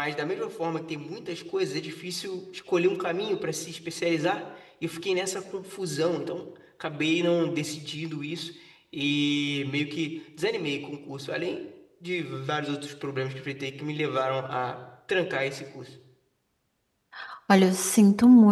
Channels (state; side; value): identical; both; correlation 1.00